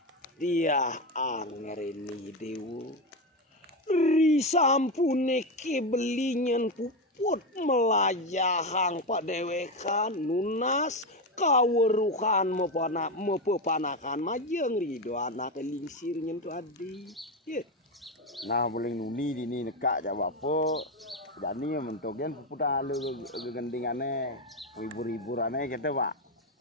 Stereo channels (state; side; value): normal; both; correlation 0.13